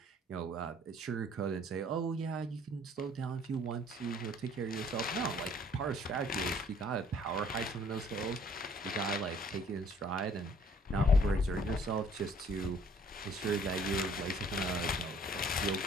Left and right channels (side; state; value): both; normal; correlation 0.57